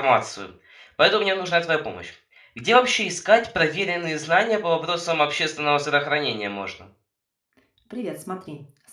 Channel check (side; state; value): both; identical; correlation 1.00